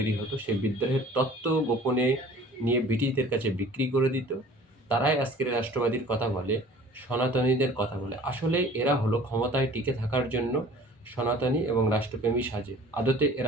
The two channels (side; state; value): both; normal; correlation 0.48